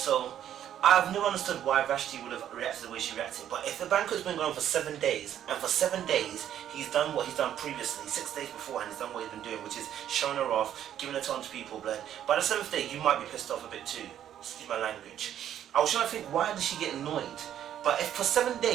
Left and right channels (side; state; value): left; quieter; 10.6 dB